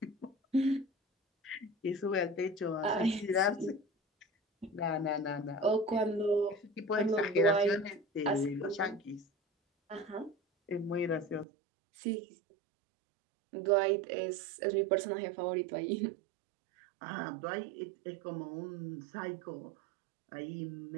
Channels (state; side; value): drops out; left; at 11.5 s